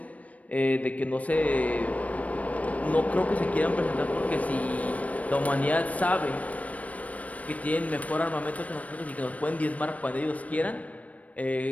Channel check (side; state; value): right; late; 0.068 ms